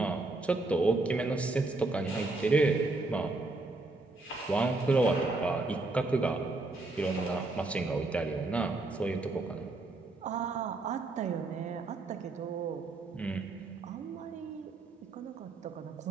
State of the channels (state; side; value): quieter; left; 3.2 dB